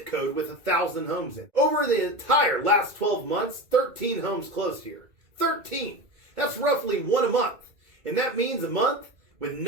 code with 1,000 homes in. Over the entire last 12 months, 13 homes closed here. 13. That's roughly one a month. And that means a month with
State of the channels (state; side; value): late; left; 2.3 ms